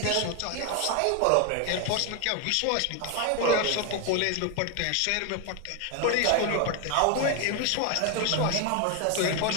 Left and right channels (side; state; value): both; different; correlation 0.01